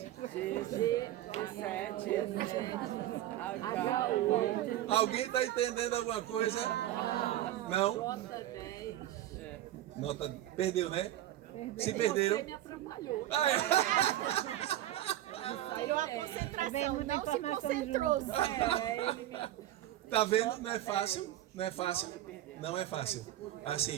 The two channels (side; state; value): left; quieter; 13.5 dB